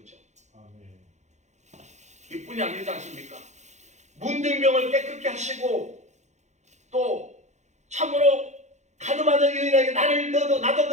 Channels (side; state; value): left; late; 0.33 ms